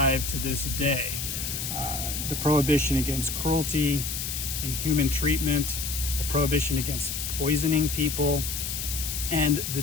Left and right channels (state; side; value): noise; left; hiss, 4 dB below the sound